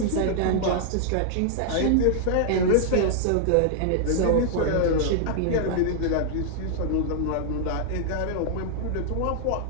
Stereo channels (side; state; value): both; different; correlation -0.01